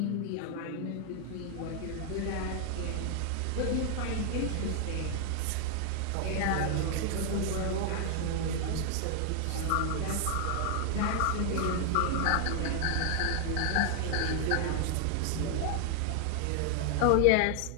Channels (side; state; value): both; different; correlation 0.00